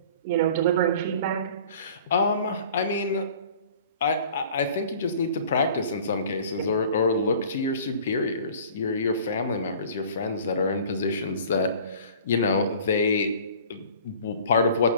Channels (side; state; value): both; inverted; correlation -0.47